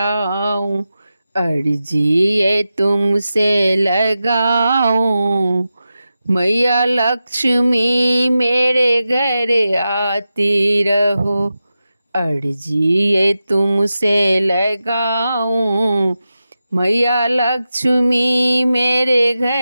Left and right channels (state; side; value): inverted; both; correlation -0.92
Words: अर्जी ये तुमसे लगाऊं। मैया लक्ष्मी मेरे घर आती रहो, अर्जी ये तुमसे लगाऊं। मैया लक्ष्मी मेरे